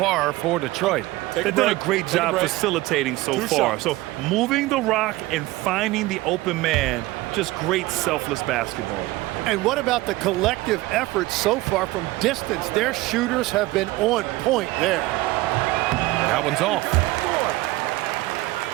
for Detroit? They've done a great job facilitating so far. So moving the rock and finding the open man, just great selfless basketball. And what about the collective effort so far from distance? Their shooters have been on point there. That one's off.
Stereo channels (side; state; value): left; quieter; 19.1 dB